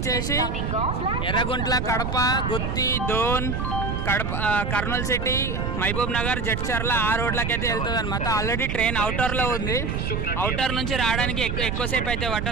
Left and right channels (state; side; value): noise; right; rumble, 1 dB below the sound